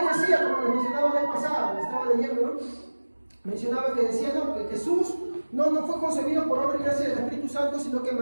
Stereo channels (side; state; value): both; inverted; correlation -1.00